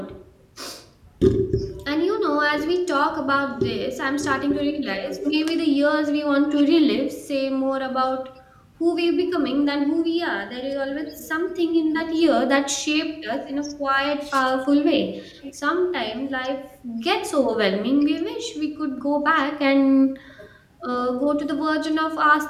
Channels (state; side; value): identical; both; correlation 1.00